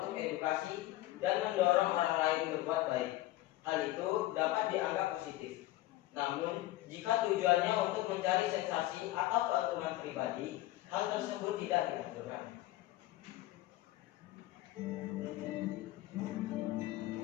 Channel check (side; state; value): right; quieter; 16.6 dB